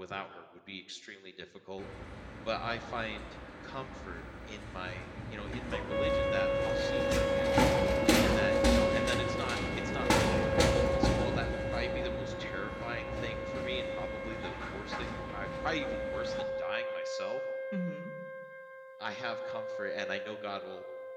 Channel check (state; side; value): identical; both; correlation 1.00